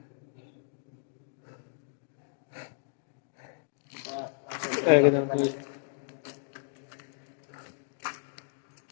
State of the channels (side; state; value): right; silent; digital silence